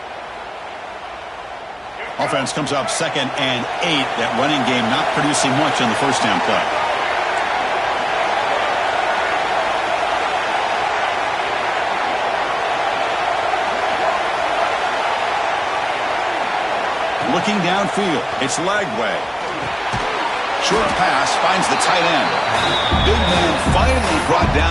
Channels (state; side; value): identical; both; correlation 1.00